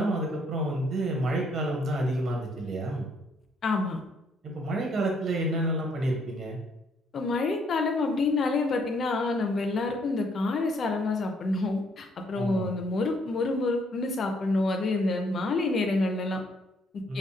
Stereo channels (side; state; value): both; normal; correlation 0.68